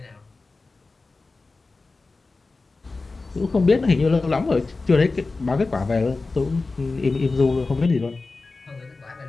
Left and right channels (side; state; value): right; quieter; 3.7 dB